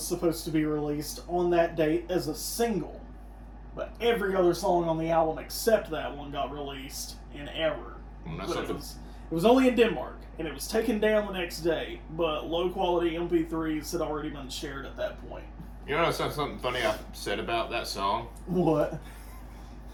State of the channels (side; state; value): both; identical; correlation 1.00